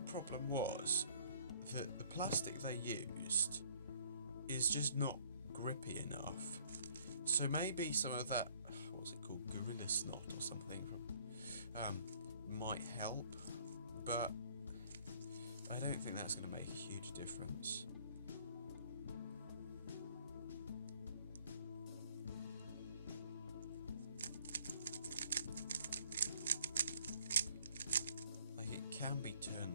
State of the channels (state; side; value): inverted; both; correlation -0.59